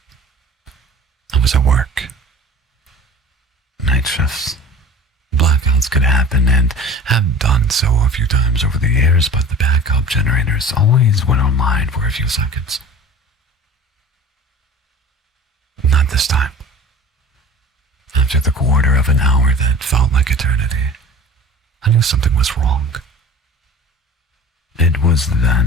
I was at work. Night shifts. Blackouts could happen and have done so a few times over the years, but the backup generators always went online for a few seconds. Not this time. After the quarter of an hour that felt like eternity, I knew something was wrong. It was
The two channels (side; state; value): both; normal; correlation 0.41